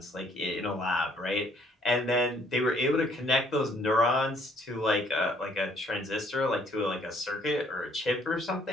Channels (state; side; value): normal; both; correlation 0.63